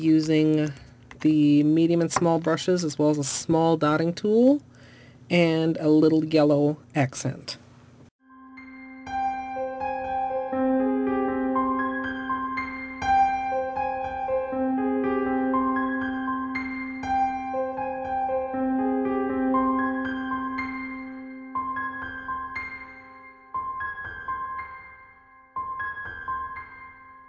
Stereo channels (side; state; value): both; identical; correlation 1.00